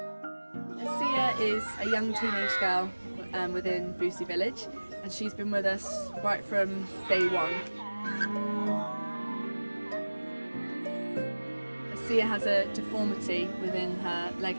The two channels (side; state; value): both; inverted; correlation -1.00